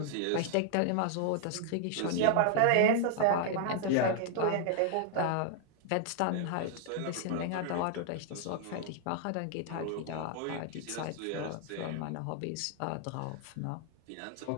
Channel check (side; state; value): both; different; correlation 0.00